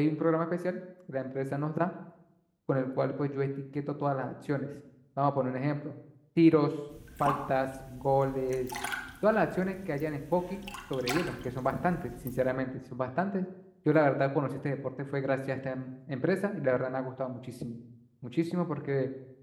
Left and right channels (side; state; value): both; identical; correlation 1.00